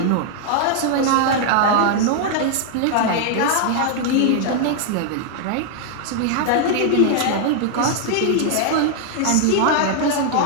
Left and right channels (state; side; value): different; both; correlation 0.00